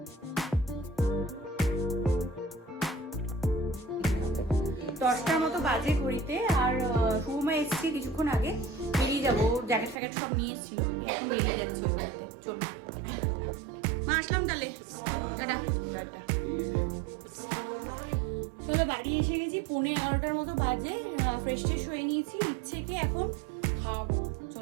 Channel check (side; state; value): left; drops out; at 10.0 s